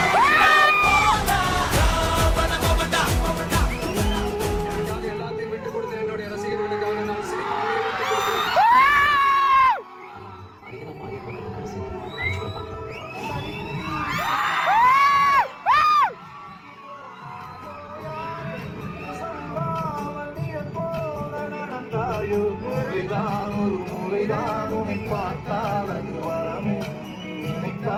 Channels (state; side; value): identical; both; correlation 1.00